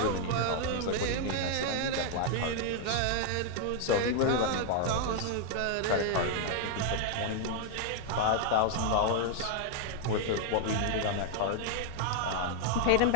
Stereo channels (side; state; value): both; different; correlation 0.00